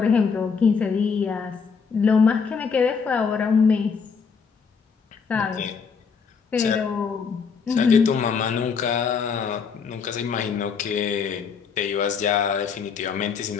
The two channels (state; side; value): quieter; right; 5.8 dB